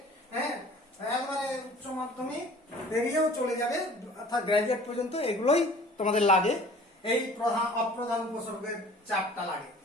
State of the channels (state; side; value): normal; both; correlation 0.48